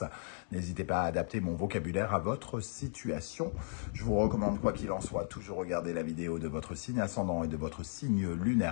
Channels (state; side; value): silent; right; 54 dB below the other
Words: N'hésitez pas à adapter mon vocabulaire à votre situation. Je vous recommande, quoi qu'il en soit, toujours regarder la vidéo de votre signe ascendant et de votre signe